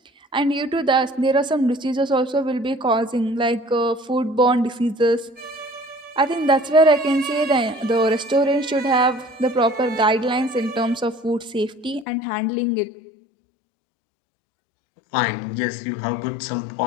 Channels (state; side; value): drops out; right; at 12.1 s